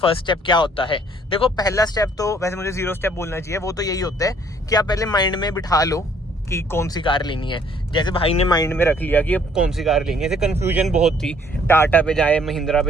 स्टेप क्या होता है। देखो पहला स्टेप तो वैसे मुझे 0 स्टेप बोलना चाहिए, वो तो यही होता है कि आप पहले माइंड में बिठा लो कि कौन सी कार लेनी है। जैसे भाई ने माइंड में रख लिया कि अब कौन सी कार लेनी है। जैसे कन्फ्यूजन बहुत थी, टाटा पे जाए महिंद्रा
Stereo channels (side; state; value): both; normal; correlation 0.62